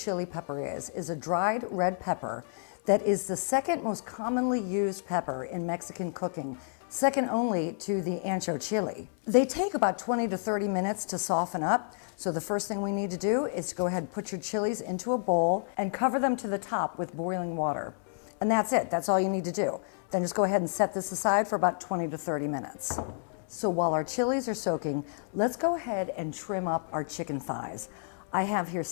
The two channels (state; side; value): silent; right; digital silence